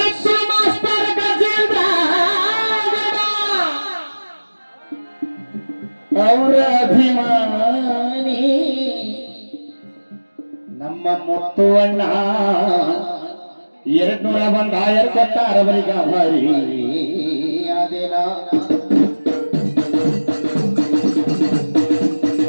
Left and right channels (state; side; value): inverted; both; correlation -1.00